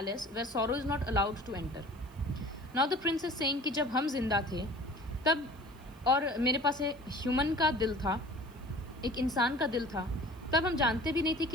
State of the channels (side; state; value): right; noise; hiss, 28 dB below the sound